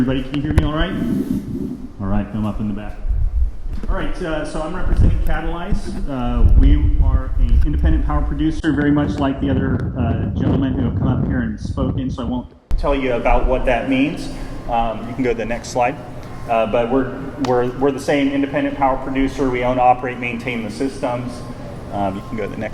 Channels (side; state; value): both; identical; correlation 1.00